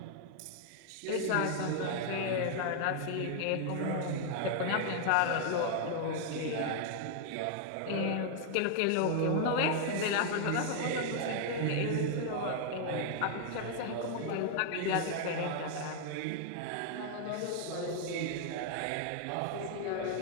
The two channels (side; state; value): both; different; correlation 0.00